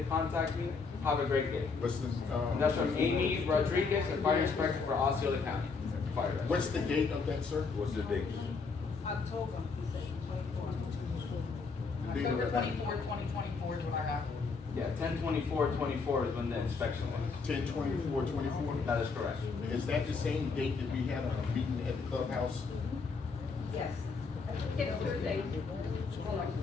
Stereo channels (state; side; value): quieter; right; 4.7 dB